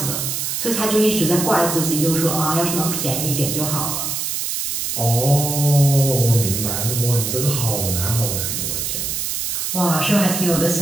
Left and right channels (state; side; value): noise; right; hiss, 2 dB below the sound